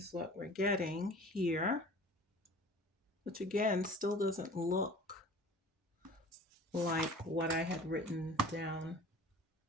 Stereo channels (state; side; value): normal; both; correlation 0.44